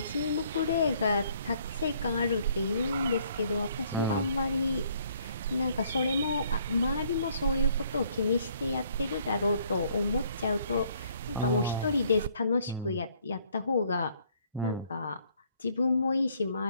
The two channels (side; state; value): both; inverted; correlation -0.64